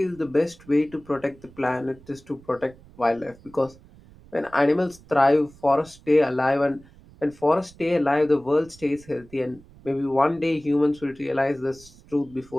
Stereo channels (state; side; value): noise; right; rumble, 24 dB below the sound